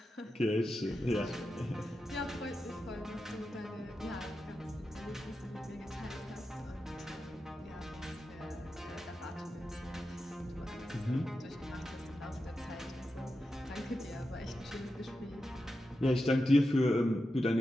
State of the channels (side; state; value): both; normal; correlation 0.90